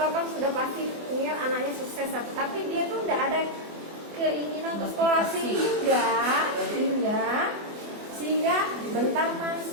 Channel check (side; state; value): left; late; 24 ms